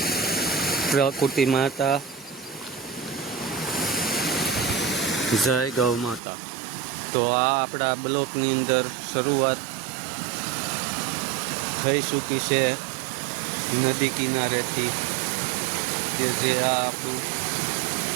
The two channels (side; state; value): left; drops out; at 6.2 s